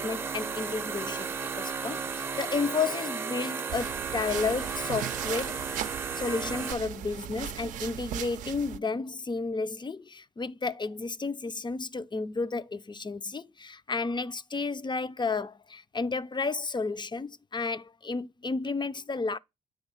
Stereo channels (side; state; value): both; normal; correlation 0.51